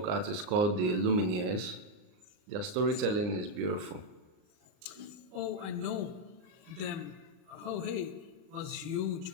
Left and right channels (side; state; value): left; late; 39 ms